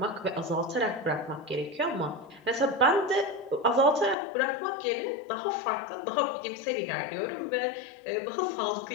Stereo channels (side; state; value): right; drops out; at 4.2 s